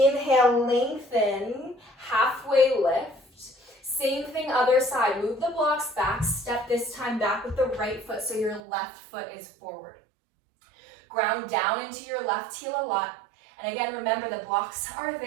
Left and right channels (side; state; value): left; drops out; at 8.6 s